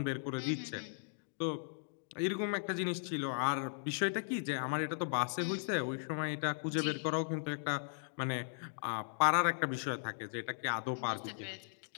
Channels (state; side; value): silent; right; digital silence